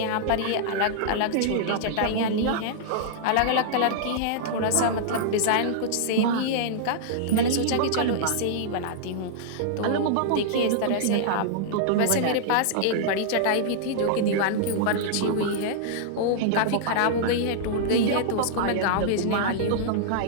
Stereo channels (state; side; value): different; both; correlation -0.01